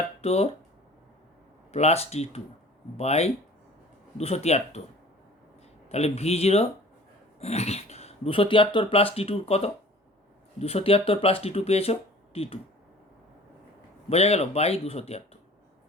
প্লাস T2 বাই 273। তাহলে V0 273 প্লাস T2 কত? 273 প্লাস T2 পেয়েছো T2, বোঝা গেল? বাই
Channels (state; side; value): normal; both; correlation 0.47